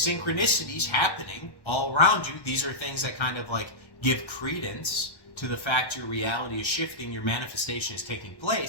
synchronicities happening all around you. These are things that kind of like give credence to the fact your reality is shifting, your manifestation is taking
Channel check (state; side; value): late; right; 1.1 ms